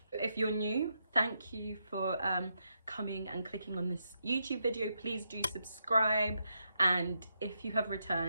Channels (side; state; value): both; inverted; correlation -0.82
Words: If you're new, thank you for coming and clicking on this YouTube video. Please do subscribe, and if you have